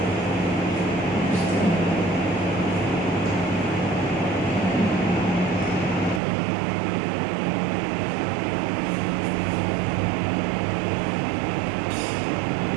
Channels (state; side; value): drops out; left; at 6.2 s